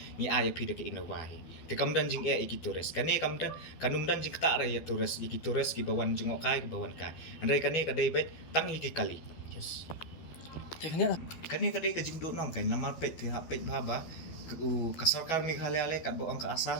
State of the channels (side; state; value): right; late; 12 ms